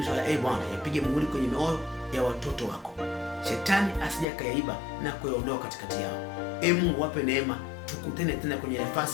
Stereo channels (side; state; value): right; drops out; at 4.2 s